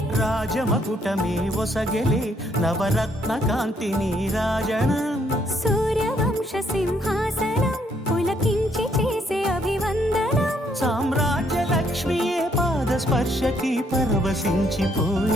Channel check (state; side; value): normal; both; correlation 0.70